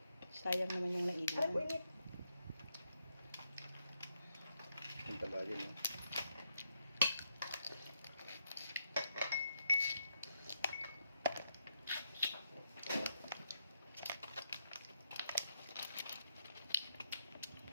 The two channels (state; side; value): inverted; both; correlation -0.79